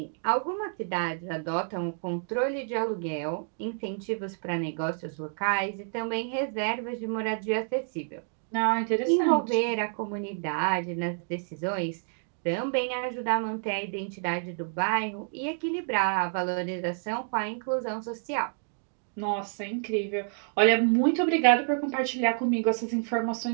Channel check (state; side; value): silent; left; 59 dB below the other